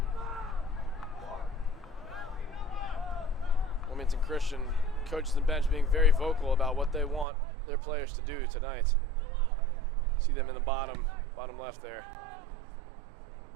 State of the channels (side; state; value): left; drops out; at 7.2 s